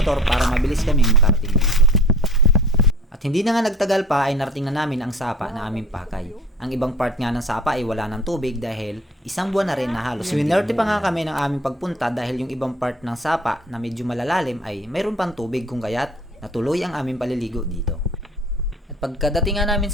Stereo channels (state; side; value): normal; both; correlation 0.45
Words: para mabilis kami makarating dito. At hindi na nga nagtagal pa ay narating na namin ang sapa na aming pakay. Ang ibang part nga ng sapa ay wala ng tubig dahil isang buwan na rin na halos. Swinerte pa nga kami ng aming pagpunta dahil yung ibang part ng sapa na medyo malalalim ay mayroon pang tubig kung kaya't natuloy ang aming paliligo dito. At pagkadating nga namin